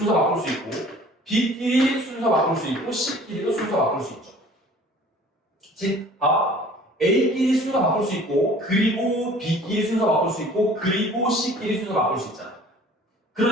바꿀 수 있고 B끼리 순서 바꿀 수 있고 C끼리도 순서 바꿀 수 있죠. 즉, A끼리 순서 바꿀 수 있고 그리고 B끼리 순서 바꿀 수 있고 그리고 C끼리 순서 바꿀 수 있잖아.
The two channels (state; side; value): normal; both; correlation 0.49